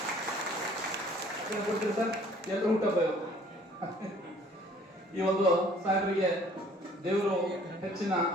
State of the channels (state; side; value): normal; both; correlation 0.56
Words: ಕೊಡ್ತೀರಿ ಸರ್. ಎಲ್ಲರೂ ಹುಟ್ಟಬ್ಬ ಈ ಒಂದು ಸಾಹೇಬರಿಗೆ ದೇವರು ಹೆಚ್ಚಿನ